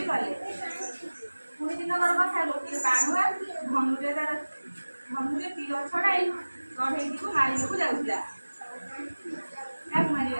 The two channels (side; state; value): both; inverted; correlation -1.00